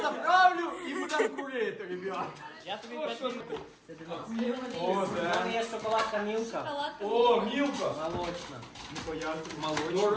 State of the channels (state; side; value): identical; both; correlation 1.00